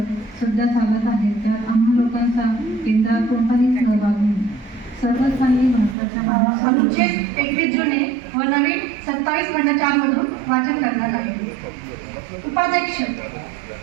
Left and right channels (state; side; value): drops out; left; at 6.0 s